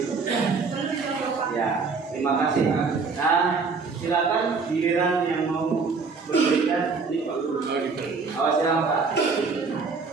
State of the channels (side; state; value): left; quieter; 4.7 dB